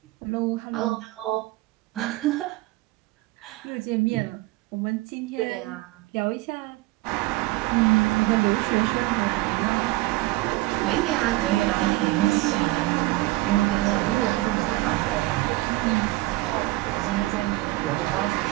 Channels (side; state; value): left; quieter; 19.6 dB